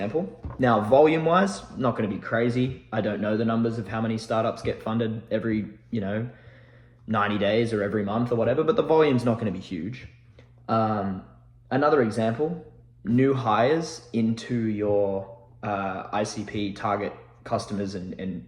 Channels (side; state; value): both; identical; correlation 1.00